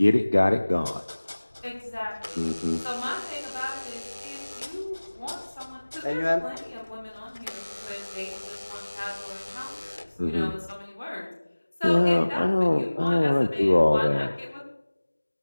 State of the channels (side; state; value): both; inverted; correlation -1.00